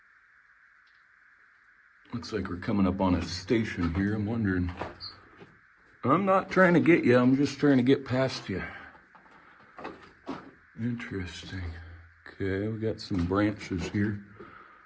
Looks like we're coming up on a station here. I'm wondering. I'm not trying to get you, I'm just trying to get past you. Interesting. Okay, we got some branches here.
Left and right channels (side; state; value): both; identical; correlation 1.00